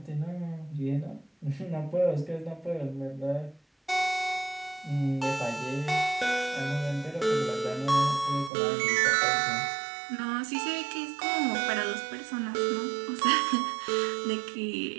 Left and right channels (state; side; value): drops out; left; at 8.5 s